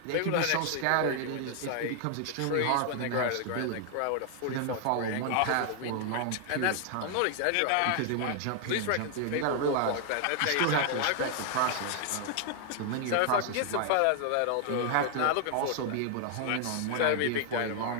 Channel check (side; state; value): both; different; correlation 0.00